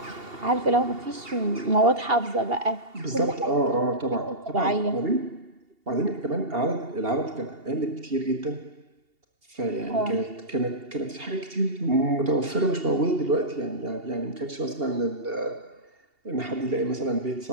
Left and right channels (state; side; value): late; left; 2.8 ms